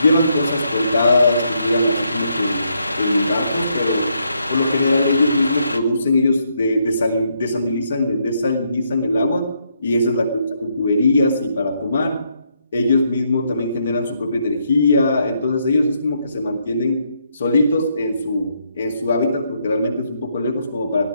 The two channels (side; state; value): both; inverted; correlation -0.76